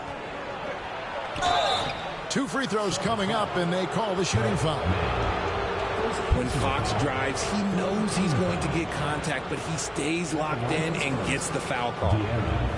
2 free throws coming up, and they call the shooting foul. When Fox drives, he knows he's going to get contact, but he stays locked in and gets the foul call.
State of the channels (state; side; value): identical; both; correlation 1.00